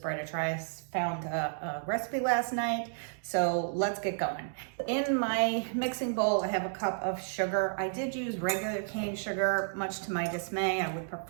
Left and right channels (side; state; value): left; silent; digital silence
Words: a try. I found a recipe last night, so let's get going. In my mixing bowl, I have a cup of sugar. I did use regular cane sugar, much to my dismay. I would